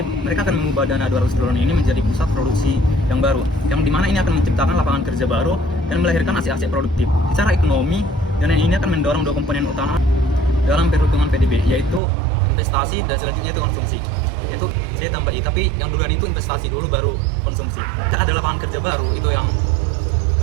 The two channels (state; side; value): drops out; left; at 12.0 s